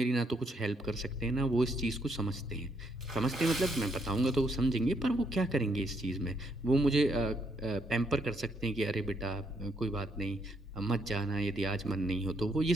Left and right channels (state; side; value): normal; both; correlation 0.73